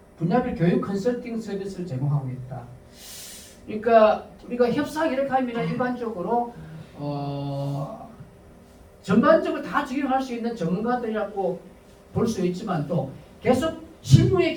분야별 교육 컨설팅 서비스를 제공하고 있다. 그러니까 우리가 협상 이렇게 하면 일반적으로 전반적으로 다 적용할 수 있는 전문가들이라고 볼 수 있지만, 또 계속 실무에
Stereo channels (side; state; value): both; identical; correlation 1.00